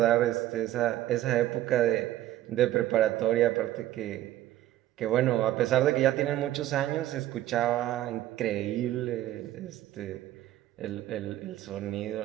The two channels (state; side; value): quieter; left; 14.0 dB